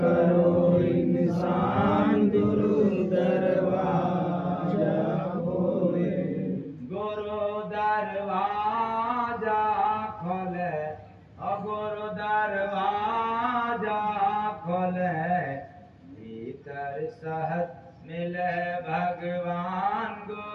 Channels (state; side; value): identical; both; correlation 1.00